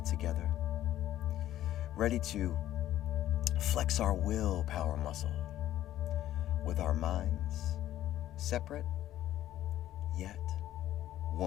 together, ready to flex our willpower muscle with our minds separate yet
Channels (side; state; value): right; quieter; 13.0 dB